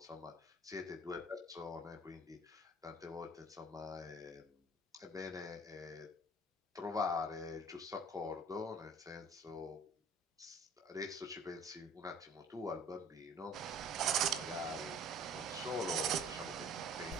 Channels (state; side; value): normal; both; correlation 0.51